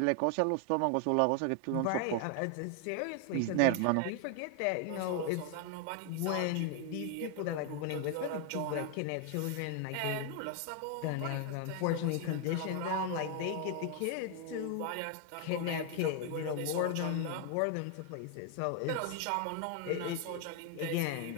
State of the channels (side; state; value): both; different; correlation 0.00